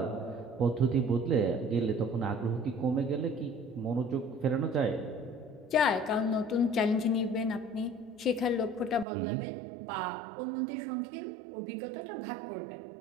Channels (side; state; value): left; drops out; at 9.1 s